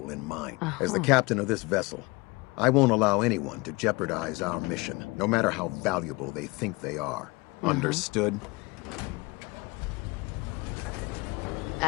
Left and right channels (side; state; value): right; quieter; 25.2 dB